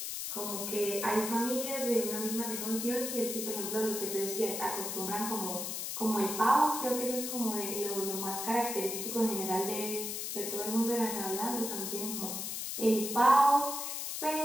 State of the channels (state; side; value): noise; left; hiss, 4 dB below the sound